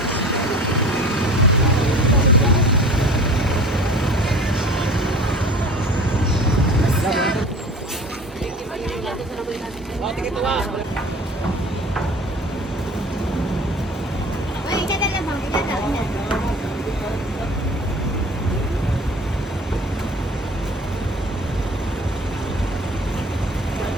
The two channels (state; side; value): normal; both; correlation 0.42